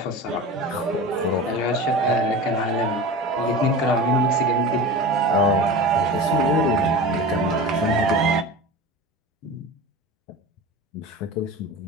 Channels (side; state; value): both; normal; correlation 0.32